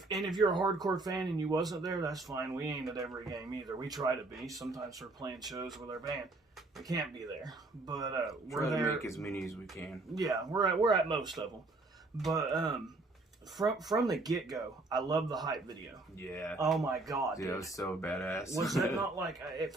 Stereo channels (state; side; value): quieter; left; 3.1 dB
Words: you're a hardcore fan and you wasn't there, that's fine. We ain't at every game either. We try to be. Sometimes we're playing shows with our band. We can't be there, but we're Try to there. make as many as we can. Yeah, we're at most of them, but from the get go, I love the hype video. Yeah. Oh my god, Dude, dude. that was so badass. Was that not like it